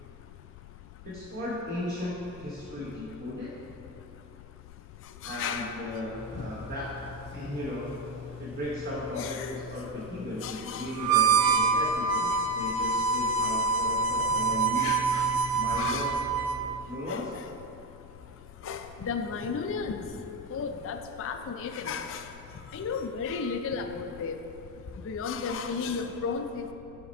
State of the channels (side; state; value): left; noise; rumble, 17 dB below the sound